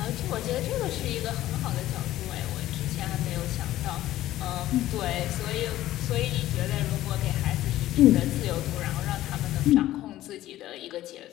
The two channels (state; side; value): quieter; right; 14.5 dB